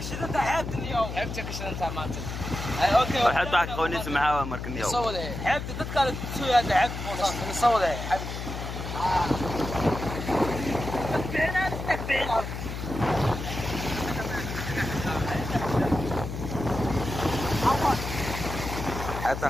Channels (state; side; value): noise; left; hum, 6 dB below the sound